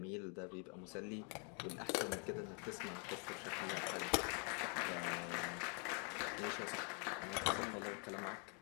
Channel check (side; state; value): right; quieter; 38.5 dB